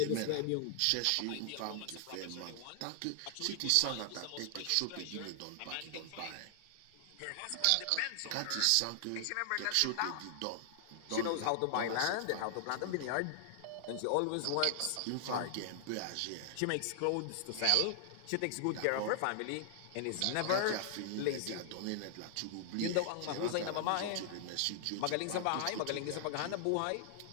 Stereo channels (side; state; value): both; different; correlation 0.00